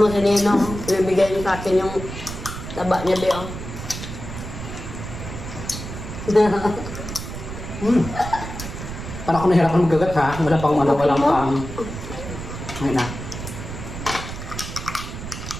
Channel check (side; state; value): right; noise; rumble, 9 dB below the sound